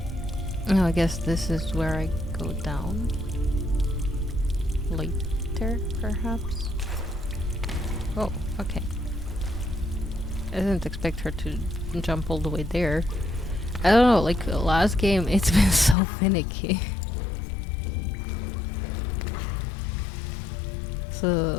Oh, I guess this is where I go down. Later, perhaps? Oh, okay. I didn't expect her to jump all the way there. I don't know, like last game, it's been so finicky.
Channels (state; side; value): drops out; right; at 16.0 s